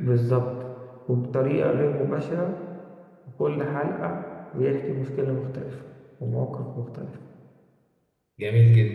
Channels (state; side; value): identical; both; correlation 1.00